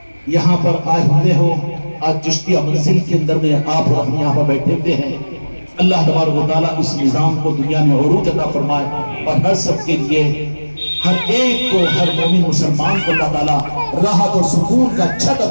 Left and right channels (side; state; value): both; inverted; correlation -1.00